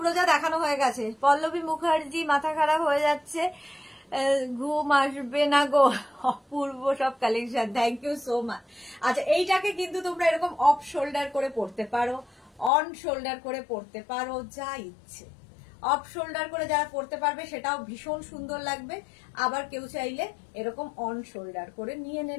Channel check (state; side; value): drops out; right; at 12.7 s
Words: দেখানো হয়ে গেছে। পল্লবী মুখার্জি, মাথা খারাপ হয়ে যাচ্ছে, ঘুম আসবে না গো, অপূর্ব সব collection, thank you so much. আচ্ছা, এইটাকে কিন্তু তোমরা এরকম অফ শোল্ডার করে পড়তে পারো, অন শোল্ডার করে পড়তে পারো, যা ইচ্ছে। অফ শোল্ডার করে যারা পড়তে পারবে সেটাও ভীষণ সুন্দর লাগবে, আবার কেউ চাইলে এরকম অন শোল্ডার করে নিয়ে